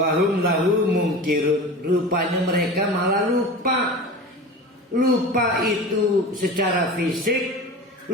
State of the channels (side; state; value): both; normal; correlation 0.32